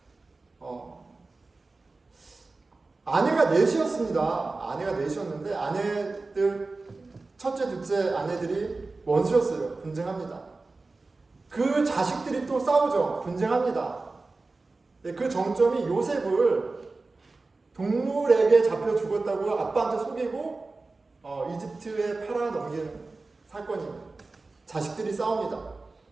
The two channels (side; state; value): left; quieter; 3.5 dB